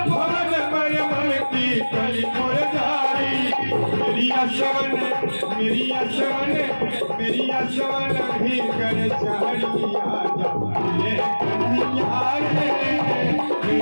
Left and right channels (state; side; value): inverted; both; correlation -1.00